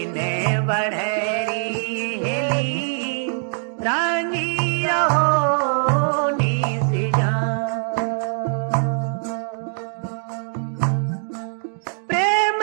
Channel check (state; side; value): silent; left; digital silence